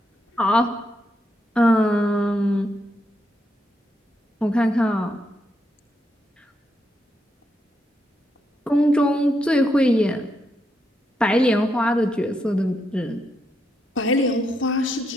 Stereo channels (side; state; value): both; normal; correlation 0.80